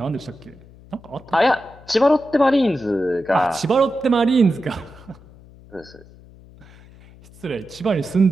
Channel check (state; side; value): noise; left; hum, 23 dB below the sound